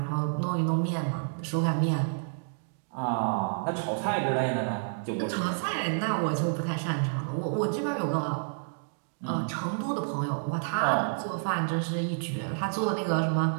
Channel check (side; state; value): left; silent; digital silence